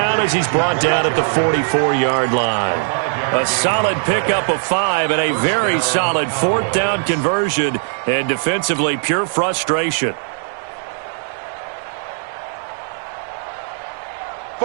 as he's brought down at the 44-yard line. A solid pickup of 5 and a very solid fourth down conversion. And defensively, pure frustration.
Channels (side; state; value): left; silent; digital silence